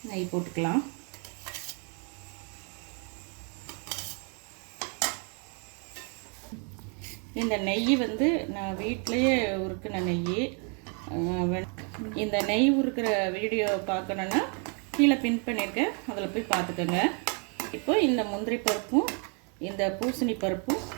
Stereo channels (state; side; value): quieter; left; 38.4 dB